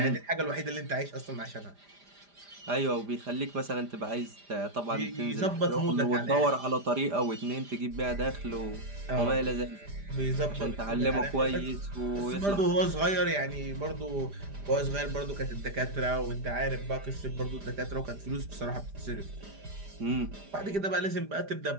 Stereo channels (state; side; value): late; left; 5.0 ms